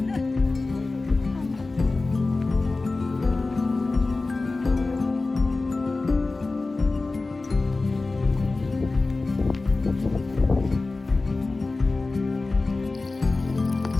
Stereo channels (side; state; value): right; quieter; 3.5 dB